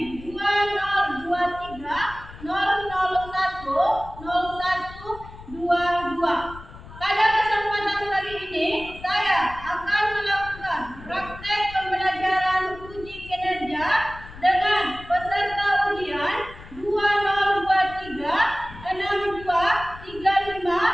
2023 001 0122. Pada kesempatan kali ini, saya akan melakukan praktek pembelajaran uji kinerja dengan peserta ujian 2023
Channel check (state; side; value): noise; left; rumble, 17 dB below the sound